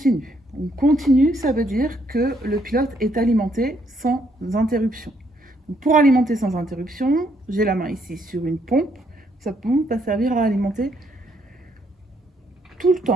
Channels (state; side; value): normal; both; correlation 0.71